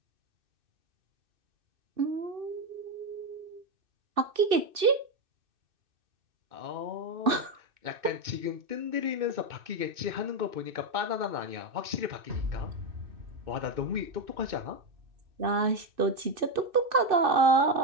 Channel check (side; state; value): left; late; 2.6 ms